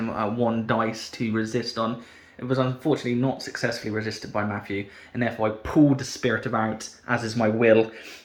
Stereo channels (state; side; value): identical; both; correlation 1.00